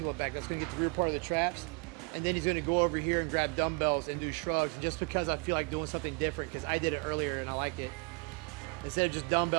back. That's gonna get the rear part of the traps. And then he's gonna go over here and grab dumbbells and do shrugs, just because I feel like doing something different, because I did it earlier and I like it. Instead of just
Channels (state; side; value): quieter; left; 31.3 dB